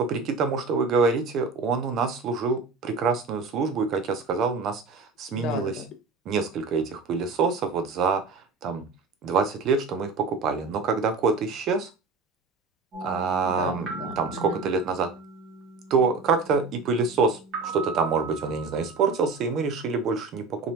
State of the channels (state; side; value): quieter; left; 4.2 dB